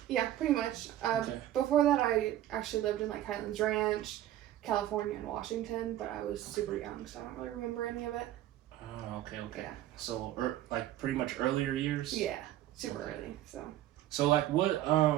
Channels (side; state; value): left; quieter; 13.2 dB